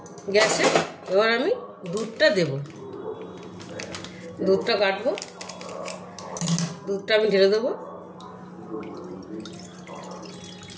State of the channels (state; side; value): identical; both; correlation 1.00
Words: গ্যাসে। এবার আমি দুধটা দেব, দুধটা কাটবো, দুধটা আমি ঢেলে দেবো।